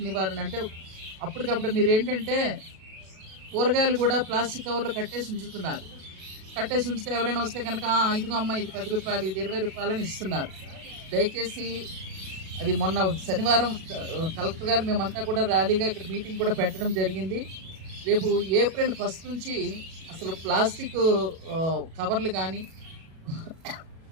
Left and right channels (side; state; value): left; late; 37 ms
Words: నివారణ అంటే అప్పటికప్పుడు మీరు ఏంటంటే కూరగాయలు కూడా ప్లాస్టిక్ కవర్లు కట్టేసి ఉంచుతున్నారు. కట్టేసి ఉంచితే ఎవరైనా వస్తే కనుక ఇదిగో అమ్మ ఇది 10 రూపాయలు, ఇది 20 రూపాయలు అని ఇస్తున్నారు. దయచేసి అది మొన్న శనివారం కలెక్టర్ గారు మేమంతా కూడా ర్యాలీగా ఇక్కడ మీటింగ్ కూడా పెట్టడం జరిగింది. రేపు ఏప్రిల్ 1 నుంచి అసలు ప్లాస్టిక్ కవర్లు కానీ